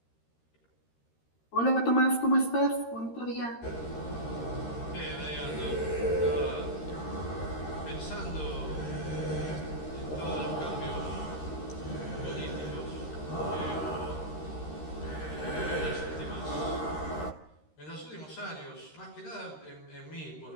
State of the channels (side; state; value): right; late; 13 ms